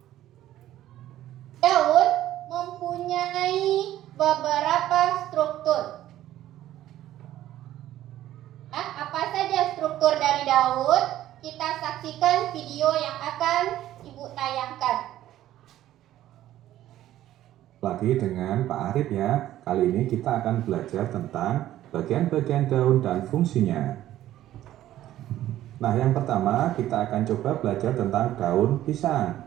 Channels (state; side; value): quieter; left; 13.4 dB